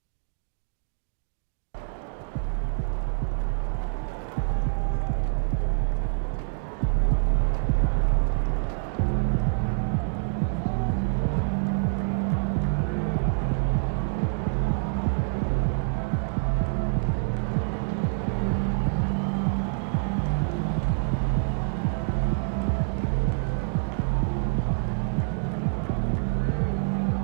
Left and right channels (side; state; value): left; silent; digital silence